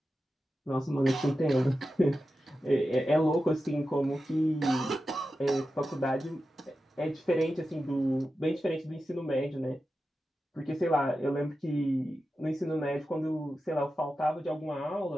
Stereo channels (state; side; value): normal; both; correlation 0.92